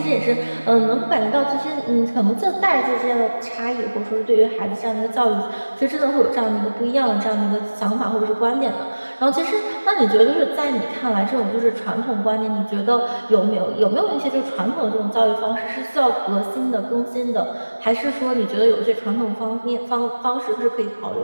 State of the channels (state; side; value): inverted; both; correlation -1.00